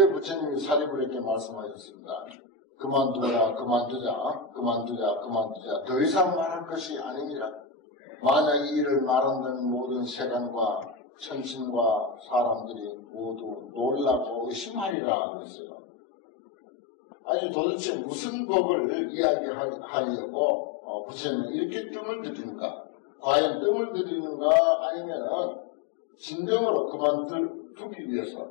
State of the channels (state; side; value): drops out; right; at 15.0 s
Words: 부처님이 사리불에게 말씀하셨습니다. 그만두자. 더 이상 말할 것이 아닙니다. 만약 이 일을 말한다면 모든 세간과 천신과 사람들이 모두 놀라고 의심하리라 그랬어요. 아니 도대체 무슨 법을 이야기하려고 부처님은 이렇게 뜸을 들이는가? 과연 뜸을 들이는가 아니면 진정으로 그만두기 위해서